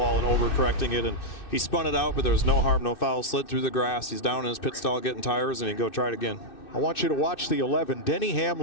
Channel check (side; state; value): right; late; 2.6 ms